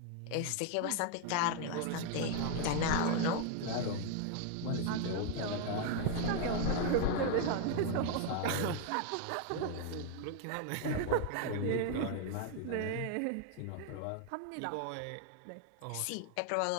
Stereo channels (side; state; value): both; different; correlation 0.01